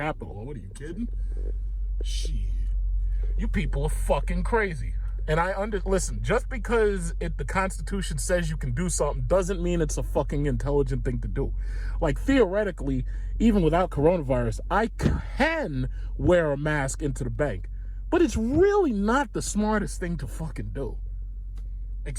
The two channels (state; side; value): identical; both; correlation 1.00